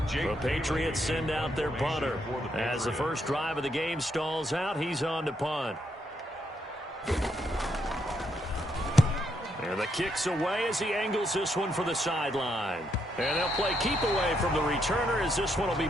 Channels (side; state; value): both; normal; correlation 0.77